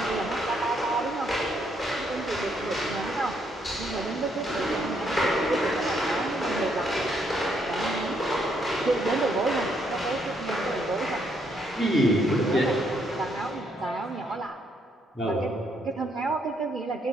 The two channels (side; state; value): both; normal; correlation 0.73